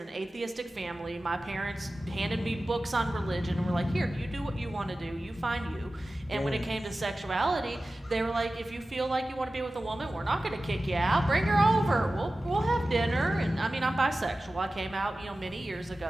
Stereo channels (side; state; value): both; normal; correlation 0.95